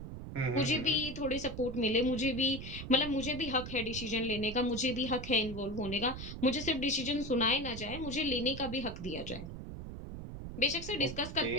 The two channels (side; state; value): right; noise; rumble, 9 dB below the sound